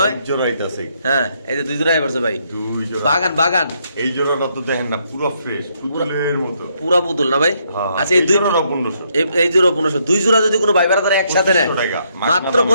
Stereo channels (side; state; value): both; inverted; correlation -0.74